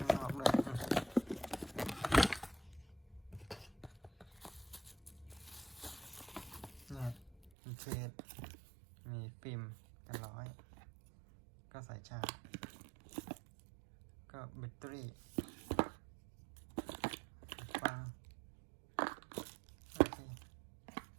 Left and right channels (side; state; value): left; drops out; at 7.5 s